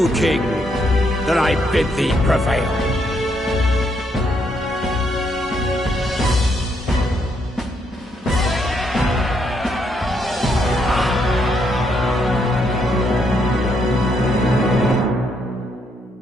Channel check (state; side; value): normal; both; correlation 0.75